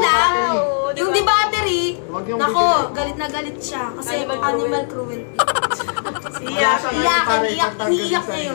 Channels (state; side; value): silent; right; digital silence